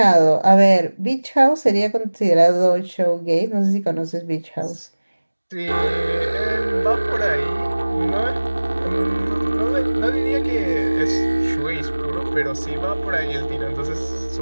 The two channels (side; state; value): both; inverted; correlation -1.00